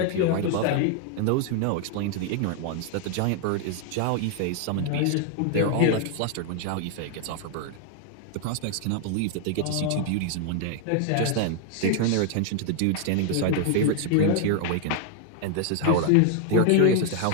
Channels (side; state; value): both; different; correlation 0.00